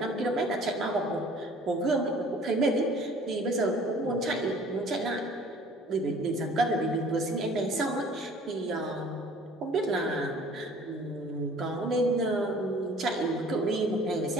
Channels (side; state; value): both; normal; correlation 0.51